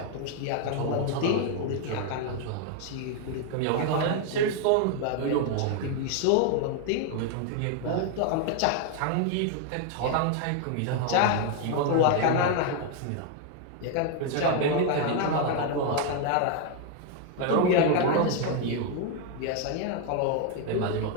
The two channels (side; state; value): both; different; correlation 0.00